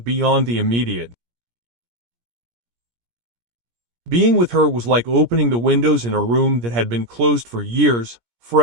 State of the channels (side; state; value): left; late; 17 ms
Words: beyond the immediate. Being with her was like opening the windows in a room that had been closed for years,